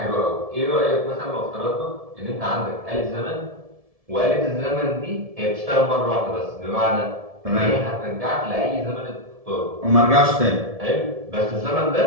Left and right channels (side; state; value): left; late; 1.7 ms